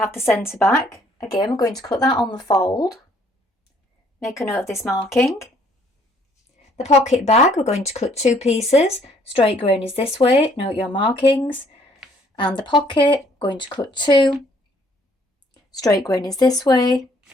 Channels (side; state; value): both; normal; correlation 0.63